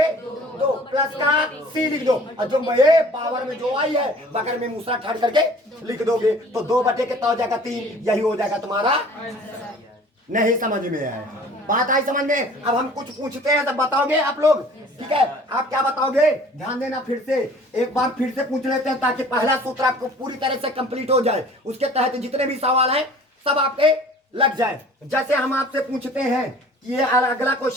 प्लस का सी लिख दो, और जो ये पावर में जो आई है बगल में मूसरा ठाड़ करके लिख दोगे, तो 2/, कितना हो जाएगा, 3, यही हो जाएगा तुम्हारा। नहीं समझ में आया, बात आई समझ में। अब हम कुछ पूछते हैं तब बताओगे आप लोग, ठीक है। आप क्या बताओगे, ध्यान देना, फिर से एक बार फिर से पूछ लेते हैं, ताकि पहला सूत्र आपको पूरी तरह से कंप्लीट हो जाए, उसके तहत जितने भी सवाल हैं सब आपके लग जाए। जैसे हम आपसे पूछते हैं कि ये अगला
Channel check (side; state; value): both; normal; correlation 0.49